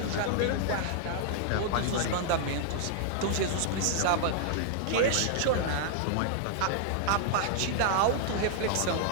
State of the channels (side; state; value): both; different; correlation -0.01